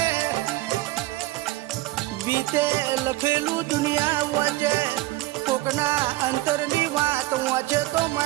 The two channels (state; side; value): quieter; left; 18.3 dB